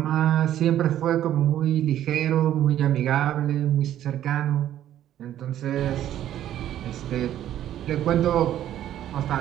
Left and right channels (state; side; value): quieter; left; 11.8 dB